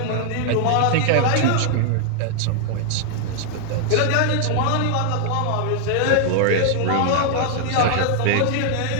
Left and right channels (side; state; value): both; different; correlation 0.00